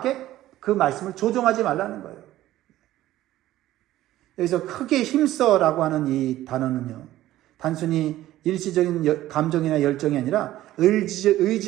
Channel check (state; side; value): quieter; left; 14.7 dB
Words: 그 말씀을 조종하지 말라는 거예요. 여기서 크게 힘써라고 하는 이 단어는요, 단순히 일시적인 감정이나 열정이 아니라